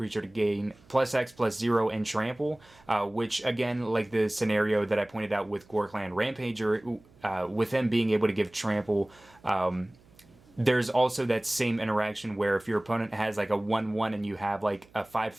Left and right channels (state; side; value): noise; right; hum, 28 dB below the sound